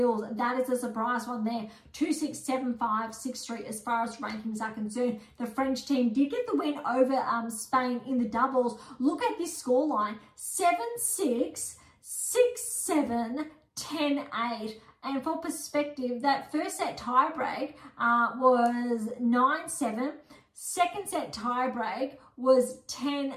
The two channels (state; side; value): identical; both; correlation 1.00